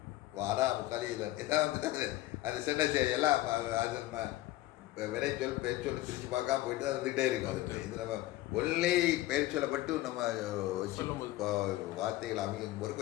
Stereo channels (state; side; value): quieter; right; 16.5 dB